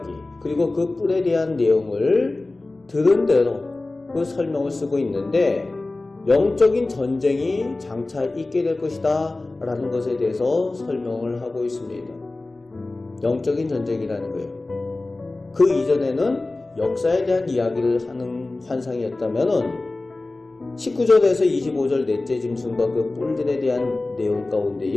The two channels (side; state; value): right; quieter; 3.1 dB